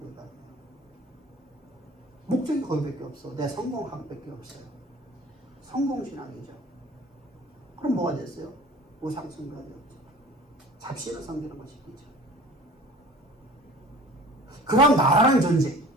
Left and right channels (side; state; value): both; normal; correlation 0.44